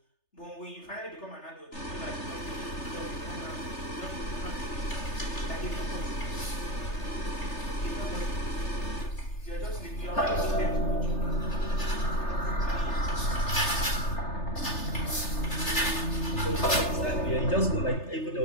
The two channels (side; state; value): right; late; 3.3 ms